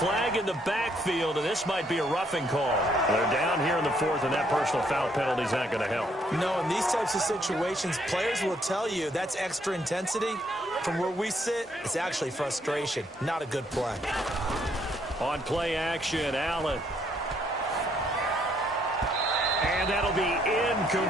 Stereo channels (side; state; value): both; normal; correlation 0.70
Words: in the backfield, and this might be a roughing call. They're down here in the fourth, and that personal foul penalty is not going to help. No, in these types of situations, players will tell you that's extra intensity. From where we sit, it's actually frustration. Not a good play. On play action, Allen. And that'll be